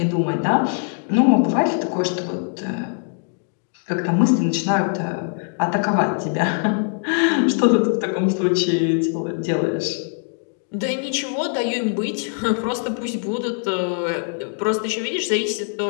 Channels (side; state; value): right; silent; 57 dB below the other